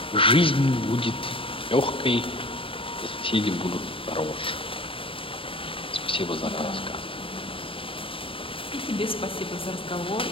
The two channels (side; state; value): right; late; 0.26 ms